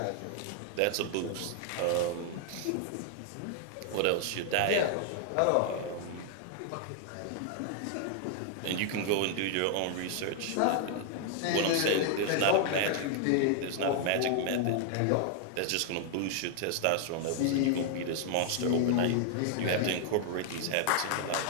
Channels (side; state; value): both; different; correlation 0.00